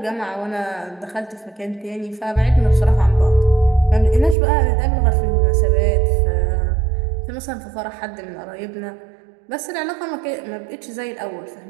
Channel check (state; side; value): drops out; left; at 4.4 s